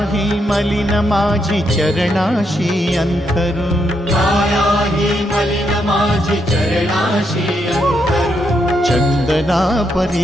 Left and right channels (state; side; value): normal; both; correlation 0.79